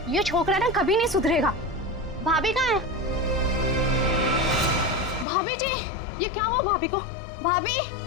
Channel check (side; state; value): right; drops out; at 5.2 s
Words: ये छोकरा ना कभी नहीं सुधरेगा। भाभी कहाँ है? भाभी जी, ये क्या हुआ भाभी को? भाभी,